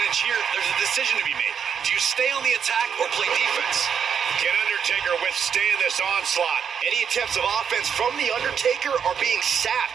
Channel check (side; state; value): left; quieter; 7.5 dB